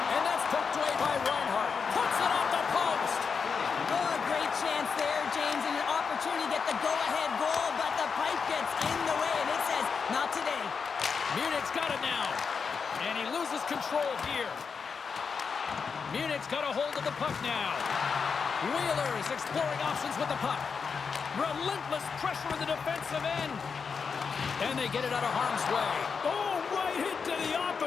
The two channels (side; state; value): right; quieter; 5.7 dB